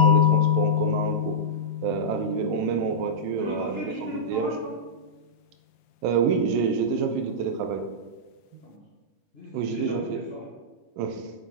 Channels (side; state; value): both; normal; correlation -0.13